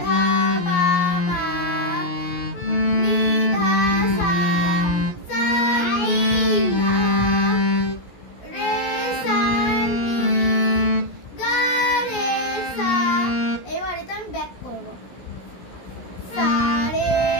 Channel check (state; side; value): late; right; 17 ms